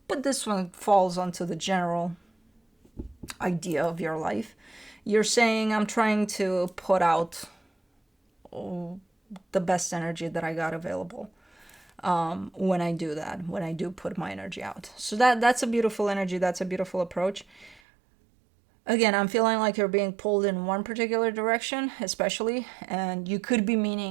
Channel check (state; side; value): drops out; left; at 17.8 s